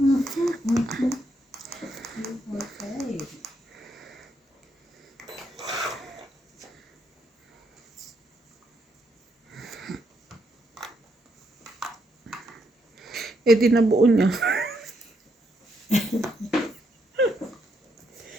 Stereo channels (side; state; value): both; normal; correlation 0.77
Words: Okay. eh di nabuo niya.